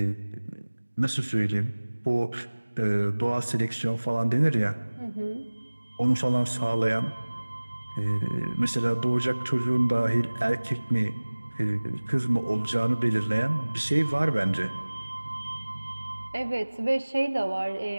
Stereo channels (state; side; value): inverted; both; correlation -1.00